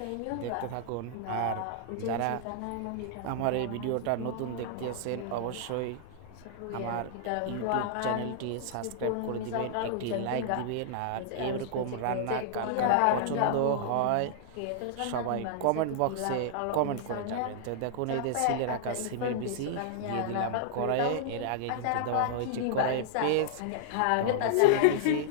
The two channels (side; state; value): both; different; correlation -0.01